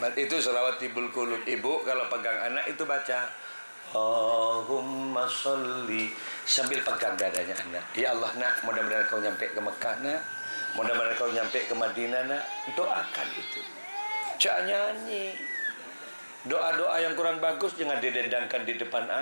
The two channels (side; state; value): both; inverted; correlation -1.00